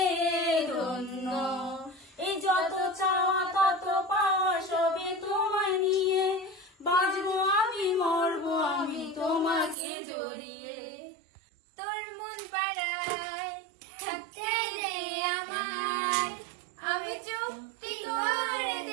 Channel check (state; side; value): drops out; left; at 9.8 s